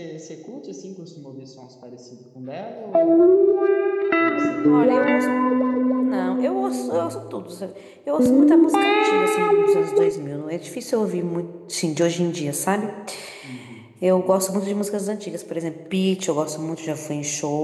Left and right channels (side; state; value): both; identical; correlation 1.00